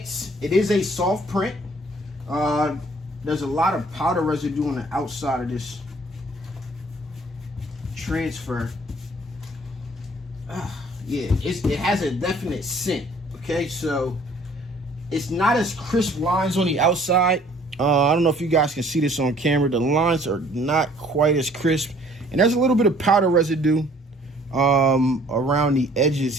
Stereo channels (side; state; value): both; normal; correlation 0.56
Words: it is a soft print. There's a lot of powder residue on the outside of this transfer. Yeah, it has a definite scent. Okay, so it's not as crisp lines on the outside. I don't know if you guys can see this on camera. The lines are not quite as crisp, and there's a little bit of powder residue around the edges